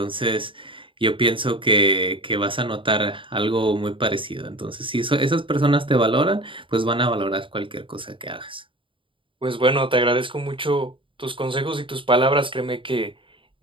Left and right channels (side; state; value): left; late; 0.25 ms